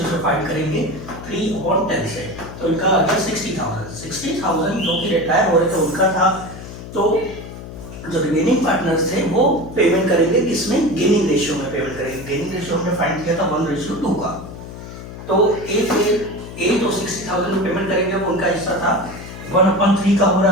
से फाइंड करेंगे 3/10 से। तो इनका आ गया 60,000 जो कि रिटायर हो रहे थे उनका था। तो जो रिमेनिंग पार्टनर्स थे वो पेमेंट करेंगे किसमें, गेनिंग रेशियो में पेमेंट करेंगे। गेनिंग रेशियो हमने फाइंड किया था 1:2 का। तो ए जो 60,000 में पेमेंट करेंगे वो उनका हिस्सा था 1/3 का हो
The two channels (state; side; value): noise; left; hum, 12 dB below the sound